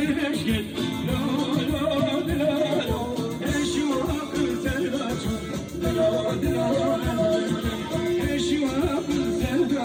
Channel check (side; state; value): both; identical; correlation 1.00